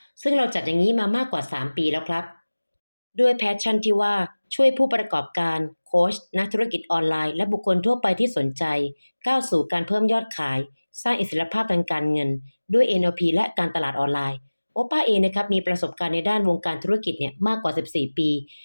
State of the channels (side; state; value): both; inverted; correlation -1.00